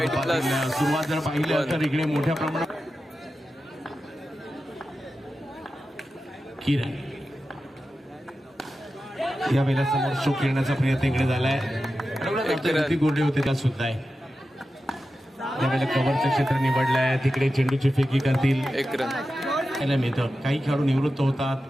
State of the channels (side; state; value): both; normal; correlation 0.92